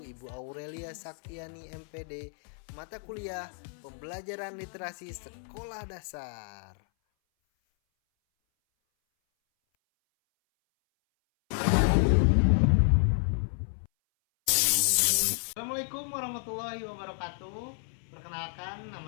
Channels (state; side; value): silent; right; 57 dB below the other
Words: Ibu Aurelia Saktiani MPD, mata kuliah Pembelajaran Literasi Sekolah Dasar. Assalamualaikum warahmatullahi wabarakatuh. Perkenalkan,